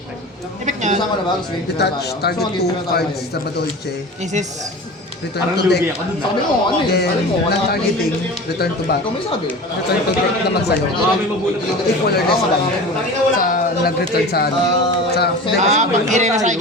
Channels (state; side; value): normal; both; correlation 0.35